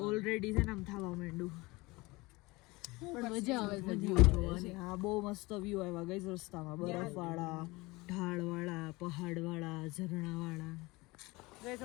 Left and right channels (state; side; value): quieter; right; 22.8 dB